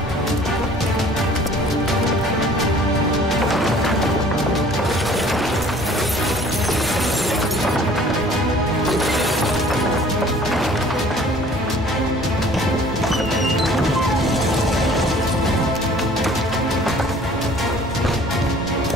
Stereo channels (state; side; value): normal; both; correlation 0.52